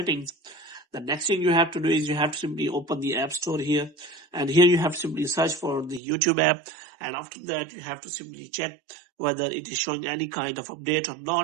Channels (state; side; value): drops out; left; at 6.0 s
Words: The next thing you have to do is you have to simply open the app store here, and here you have to simply search for the YouTube app, and after that you have to simply check whether it is showing any kind of update or